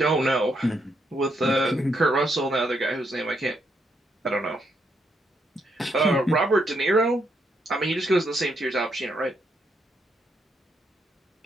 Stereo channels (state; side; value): normal; both; correlation 0.77